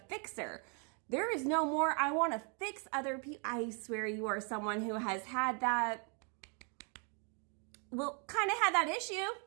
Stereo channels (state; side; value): quieter; left; 37.6 dB